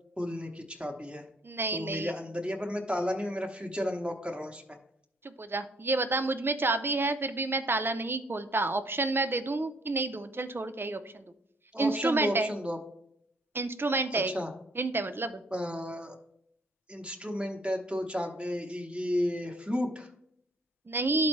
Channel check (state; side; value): normal; both; correlation 0.63